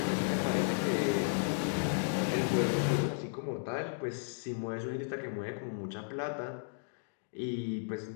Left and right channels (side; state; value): right; silent; digital silence